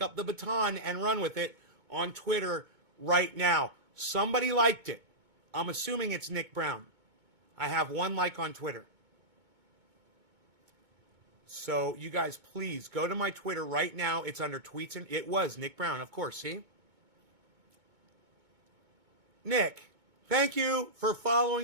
up the baton, and run with it on Twitter right now. Somebody liked it. I'm assuming it's Nick Brown. I have one like on Twitter. So you guys, please go to my Twitter right now. It's under tweets, and it was Nick Brown, of course. See? Nick, Thank you for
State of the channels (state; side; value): late; left; 2.2 ms